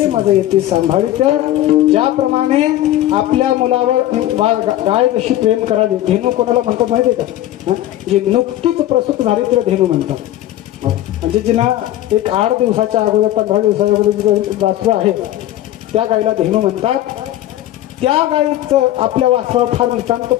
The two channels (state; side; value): quieter; right; 13.8 dB